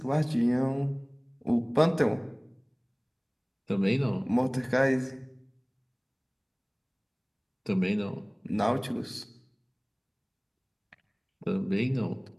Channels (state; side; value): identical; both; correlation 1.00